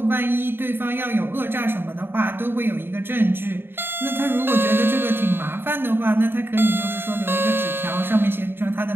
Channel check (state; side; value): late; left; 0.11 ms